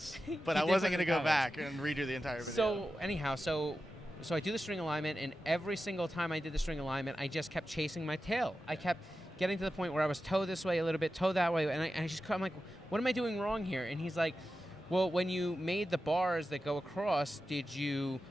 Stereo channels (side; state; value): both; normal; correlation 0.92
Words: He but I did wasn't put it going in to the go comments. back and redo the entire video. So anyhow, so I do the string alignment, and every single time I did the string alignment, I just kept chasing my tail. I kept getting to the point where I was toe this way a little bit, toe that way, and I'm like, what am I doing wrong here? And he's like, well, when you made the bars that go across, did you